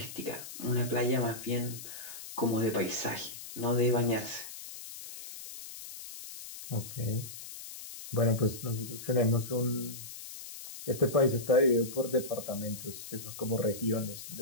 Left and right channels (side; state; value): left; noise; hiss, 12 dB below the sound